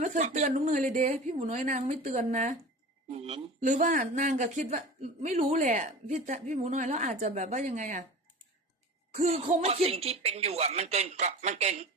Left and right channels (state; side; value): normal; both; correlation 0.34